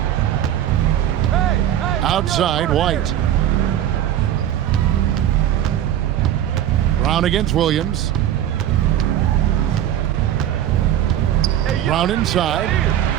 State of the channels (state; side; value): quieter; left; 11.2 dB